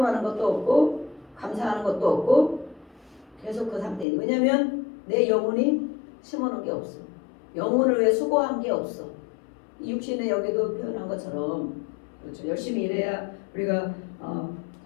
것도 없고 감사하는 것도 없고 계속 그 상태에. 왜냐하면 내 영혼이 심어놓은 게 없어. 영혼을 위해 수고한 게 없어. 이 육신에 여기도 표현한 것처럼 그렇죠. 열심히 일해야 우리가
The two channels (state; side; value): drops out; right; at 4.0 s